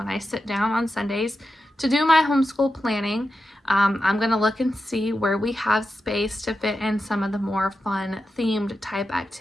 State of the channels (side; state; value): both; normal; correlation 0.90